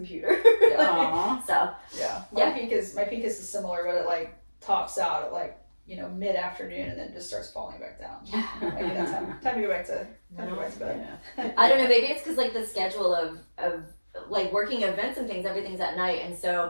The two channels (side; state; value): both; inverted; correlation -1.00